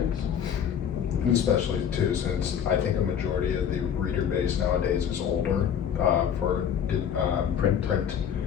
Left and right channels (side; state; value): right; quieter; 8.5 dB